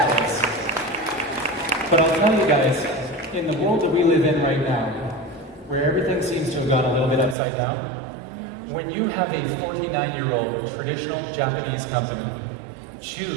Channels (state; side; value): drops out; left; at 7.4 s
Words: this. But I'll tell you guys, in the world that we live in right now, where everything seems to have gone a little bit upside down, when you have a 49-year-old traditional Japanese company